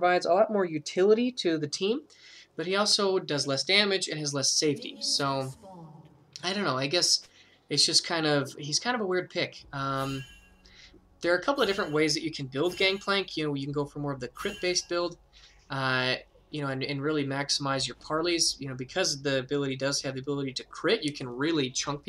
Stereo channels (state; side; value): identical; both; correlation 1.00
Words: a lot more utility to the team, but he also does less damage and has less safety. So, I don't know, I guess it's just he's kind of a weird pick. There are a couple of different ways that you can build Gangplank. You know, you can go for more of the crit-based build, you know, and really maximize your parleys. You know, because the ability does have the ability to crit, you can really chunk